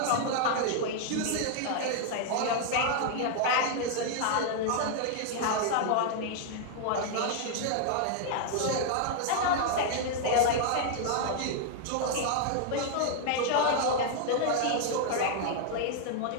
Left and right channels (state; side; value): different; both; correlation 0.00